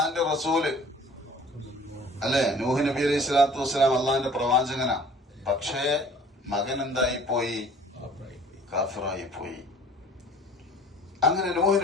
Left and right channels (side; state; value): both; normal; correlation 0.50